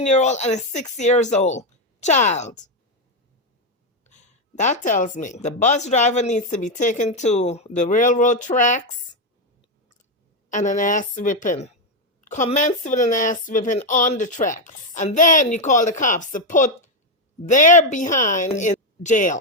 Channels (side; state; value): both; normal; correlation 0.06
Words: and a 6-year-old child? That tells me the bus driver needs to be taken to the railroad tracks and an ass whipping. Commence with an ass whipping on the tracks. And then you call the cops to put their behind in